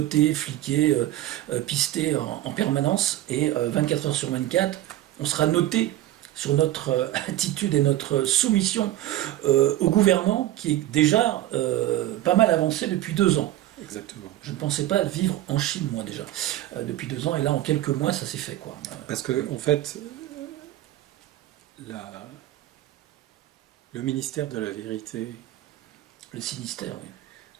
fliqués, pistés en permanence, et 24 heures sur 24, on sera noté sur notre attitude et notre soumission au gouvernement qui est déjà pas mal avancé depuis 2 ans. Exactement. Je ne pensais pas vivre en Chine, moi, déjà, depuis 2 ans, et là, en quelques mois, ça s'est fait, quoi. Parce que, en fait, le ministère de la vérité... Le sinistère, oui.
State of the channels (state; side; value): quieter; left; 14.3 dB